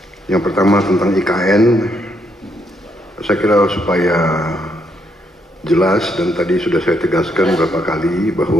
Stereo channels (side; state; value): both; normal; correlation 0.75